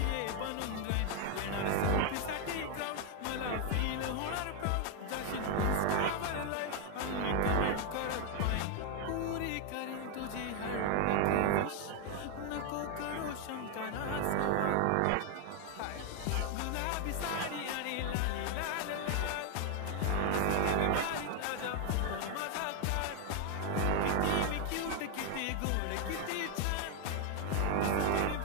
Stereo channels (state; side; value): different; both; correlation 0.00